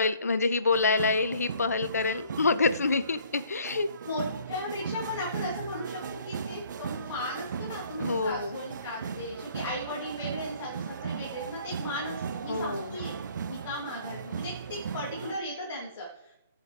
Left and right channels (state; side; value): inverted; both; correlation -0.57